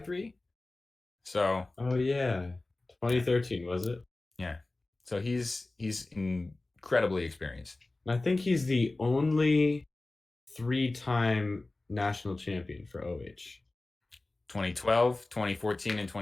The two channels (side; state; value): right; quieter; 3.1 dB